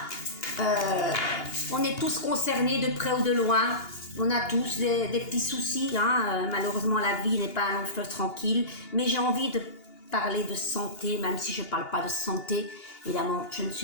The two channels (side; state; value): right; late; 2.8 ms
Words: on est tous concernés de près ou de loin. On a tous des petits soucis, hein. Malheureusement la vie n'est pas un long fleuve tranquille, mais j'ai envie de parler de santé, même si je ne parle pas de santé. Évidemment, je ne